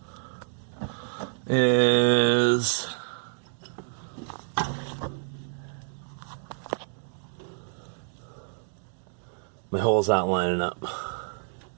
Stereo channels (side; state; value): left; silent; digital silence